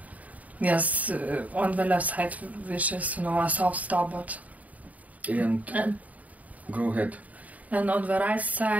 Yes, on the left side, which is a soft stop, but. And go ahead. And on the right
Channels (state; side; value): late; left; 0.072 ms